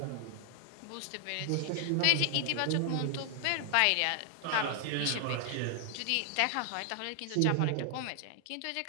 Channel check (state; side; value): different; both; correlation 0.00